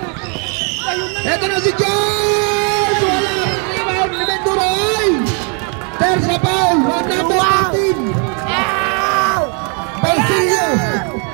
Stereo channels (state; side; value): quieter; left; 38.3 dB